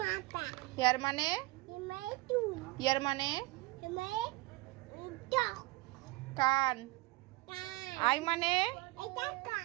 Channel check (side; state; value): left; quieter; 21.4 dB